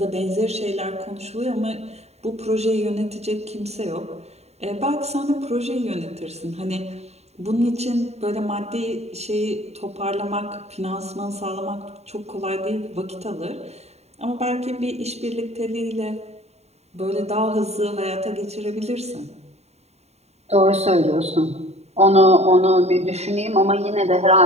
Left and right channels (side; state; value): left; late; 0.31 ms